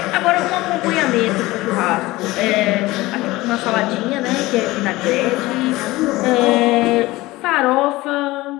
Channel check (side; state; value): right; quieter; 19.3 dB